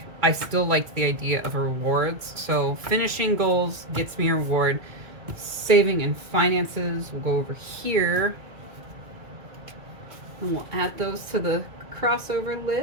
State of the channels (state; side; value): late; left; 2.3 ms